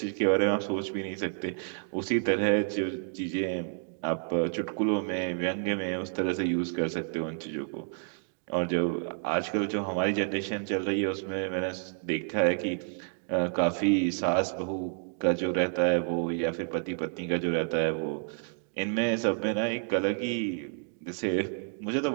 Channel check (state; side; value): silent; left; 58 dB below the other